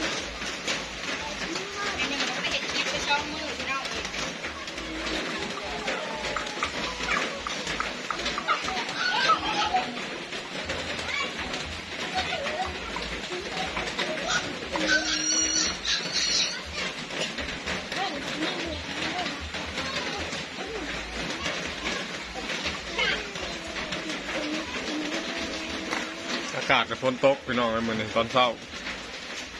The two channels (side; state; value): both; identical; correlation 1.00